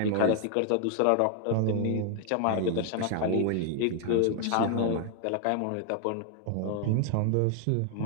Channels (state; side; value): different; both; correlation 0.00